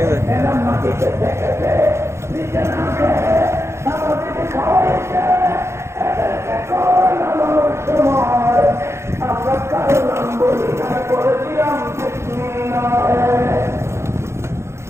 এরা মাটিতে রেখেছে, নিচে নামে আমাদেরকে খাওয়াইছে। এদেরকে খাওয়ানোর সময় আমরা কারো নাম বলি না, করেছিলাম বিসমিল্লাহ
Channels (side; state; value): left; late; 0.13 ms